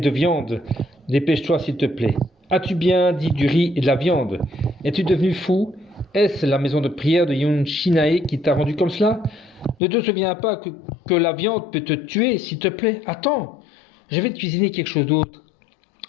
viande. Dépêche-toi s'il te plaît. » « As-tu bien dit du riz et de la viande? Es-tu devenu fou? Est-ce la maison de prière de Yun Shinae qui t'a rendu comme cela? Ne te souviens pas que la viande peut te tuer, s'il te plaît? Attends, je vais te cuisiner quelque chose d'autre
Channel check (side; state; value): right; drops out; at 9.8 s